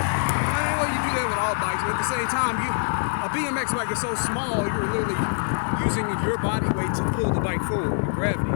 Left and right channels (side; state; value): right; silent; digital silence